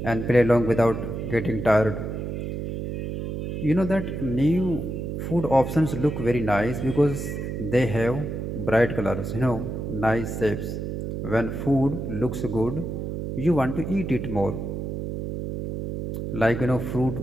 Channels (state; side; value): noise; right; hum, 5 dB below the sound